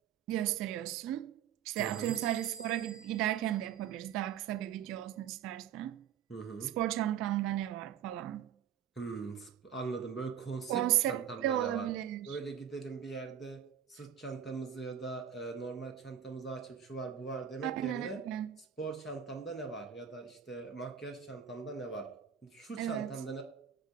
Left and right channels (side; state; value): left; quieter; 9.4 dB